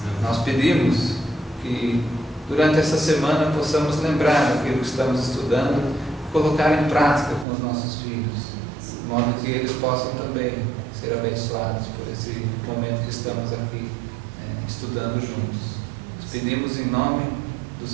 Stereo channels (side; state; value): left; drops out; at 7.5 s